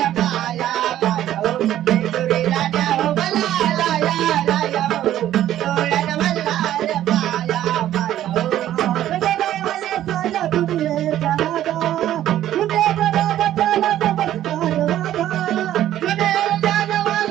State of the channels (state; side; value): quieter; left; 12.4 dB